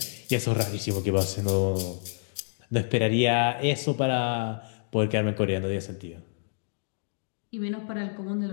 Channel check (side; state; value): right; silent; digital silence